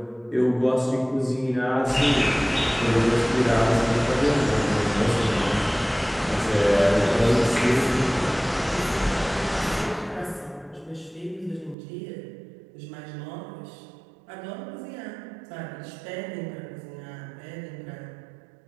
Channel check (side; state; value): left; drops out; at 11.8 s